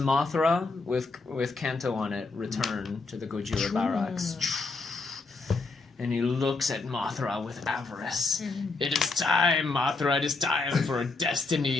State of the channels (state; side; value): quieter; right; 3.8 dB